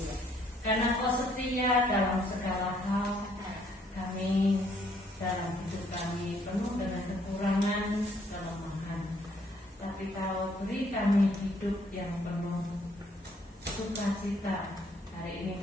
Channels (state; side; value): normal; both; correlation 0.66